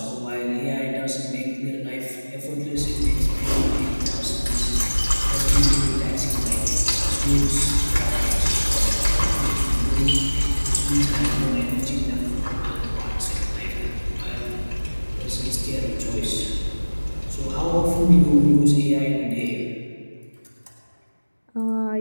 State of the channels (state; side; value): inverted; both; correlation -1.00